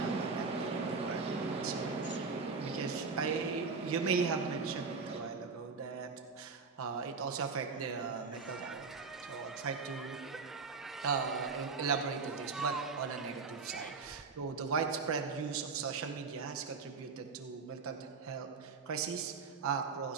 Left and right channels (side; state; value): left; quieter; 4.8 dB